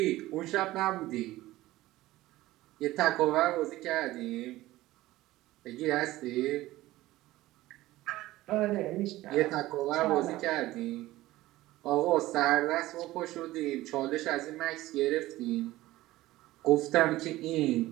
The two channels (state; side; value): quieter; left; 17.0 dB